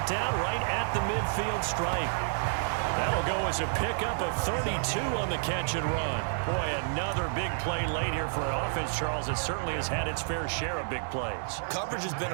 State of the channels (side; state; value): left; silent; 58 dB below the other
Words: down right at the midfield stripe. That'll go as a pickup of 32 on the catch and run. Boy, another big play late here for an offense, Charles, that certainly has had its fair share of big plays. Coverage has been